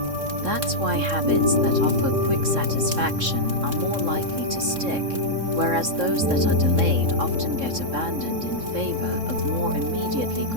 That's why habits that offer quick satisfaction are more likely to stick, whereas those that are delayed often get abandoned in favor of more immediately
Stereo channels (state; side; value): late; left; 3.6 ms